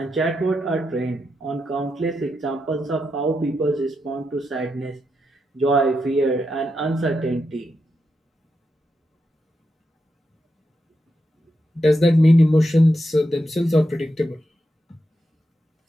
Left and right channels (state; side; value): normal; both; correlation 0.85